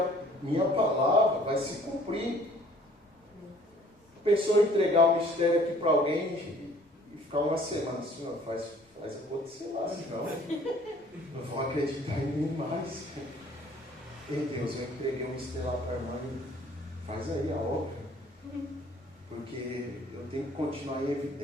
minha palavra vai se cumprir. Pensou em entregar o mistério aqui para alguém e ficar uma semana, Senhor, faz acontecer lá, senão não vão acreditar em mim mais. Ei Deus, eu entreguei o mistério lá para a irmã e faz aí a obra. Porque eu tenho que continuar em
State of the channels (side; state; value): both; normal; correlation 0.55